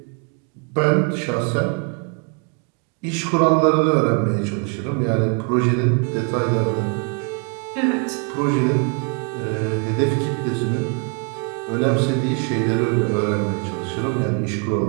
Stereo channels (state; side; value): quieter; left; 35.1 dB